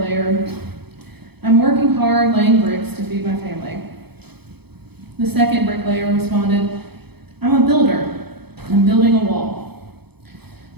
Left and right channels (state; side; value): late; left; 0.98 ms